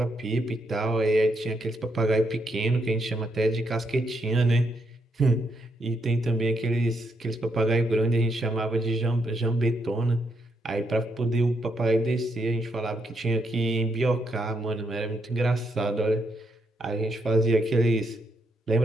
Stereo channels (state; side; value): normal; both; correlation 0.78